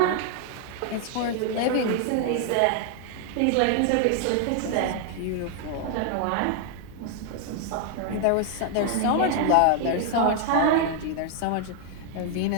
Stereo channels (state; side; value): different; both; correlation 0.00